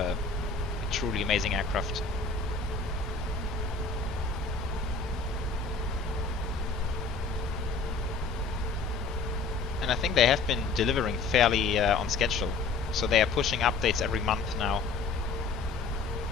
truly amazing aircraft. And I think they have been delivering fairly on schedule, so they are pushing updates every month now.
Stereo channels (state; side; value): quieter; right; 4.3 dB